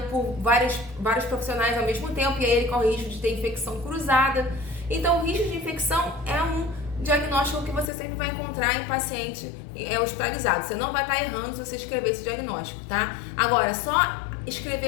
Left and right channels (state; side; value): drops out; right; at 7.9 s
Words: por vários profissionais ao mesmo tempo, e aí ele corre o risco de ter infecção cruzada. Então, o risco de infecção é um diagnóstico que você sempre vai encontrar em paciente hospitalizado. Você não vai estar errando se você escrever esse diagnóstico, tá? Agora, só